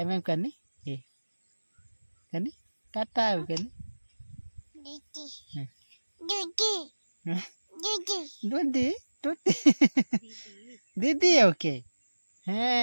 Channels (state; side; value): inverted; both; correlation -1.00